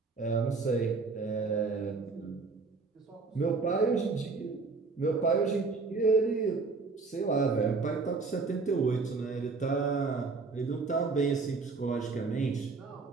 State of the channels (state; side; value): quieter; left; 4.3 dB